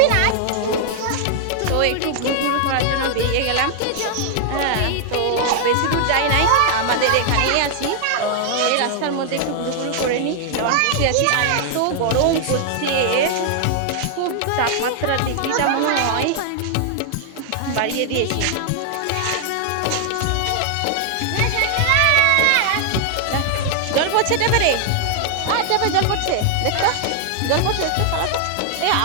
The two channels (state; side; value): different; both; correlation 0.00